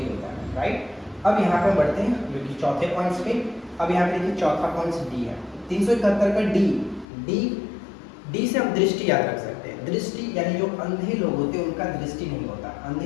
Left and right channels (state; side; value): drops out; right; at 7.1 s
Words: होता है, राइट। अब यहाँ पे बढ़ते हैं जो कि चौथे पॉइंट्स पे। अब यहाँ पे देखिए चौथा पॉइंट डी है, 371 का डी, डी, डी से हम दृष्टि याद रख सकते हैं। दृष्टि यानी जो अंधे लोग होते हैं उनका दृष्टि नहीं होता,